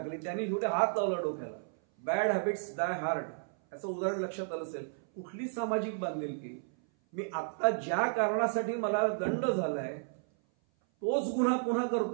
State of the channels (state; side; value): silent; left; 56 dB below the other